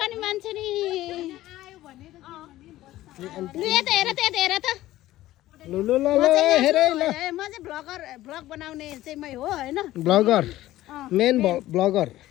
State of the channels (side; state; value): right; quieter; 15.4 dB